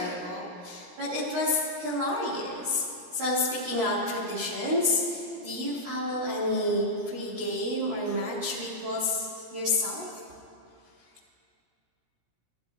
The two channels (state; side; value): late; left; 16 ms